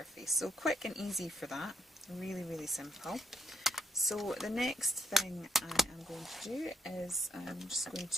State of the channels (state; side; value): normal; both; correlation 0.76